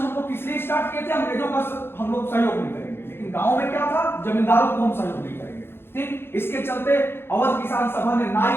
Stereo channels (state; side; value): late; right; 0.11 ms